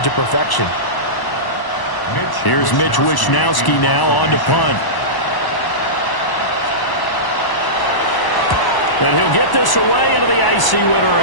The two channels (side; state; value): right; late; 1.0 ms